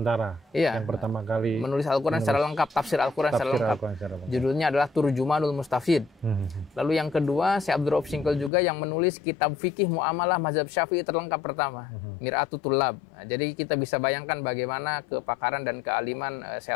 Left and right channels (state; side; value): drops out; right; at 8.5 s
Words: Iya, yang pertama kali menulis Al-Quran secara lengkap, tafsir Al-Quran secara lengkap. Judulnya adalah Turjumanul Mustafid. Lalu yang kedua, Syekh Abdul Rauf Singkel juga yang menulis kitab fikih muamalah mazhab Syafi'i terlengkap pertama, Mir'atut Tullab. Jadi kita bisa bayangkan bagaimana kepakaran dan kealiman Syekh